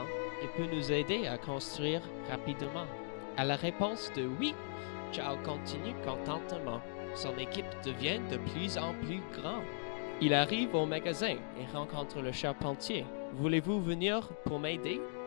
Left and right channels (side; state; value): right; silent; digital silence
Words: Il peut nous aider à construire rapidement. À la réponse de oui, Charles continue contentement. Son équipe devient de plus en plus grande. Il arrive au magasin et rencontre le charpentier. Voulez-vous venir pour m'aider?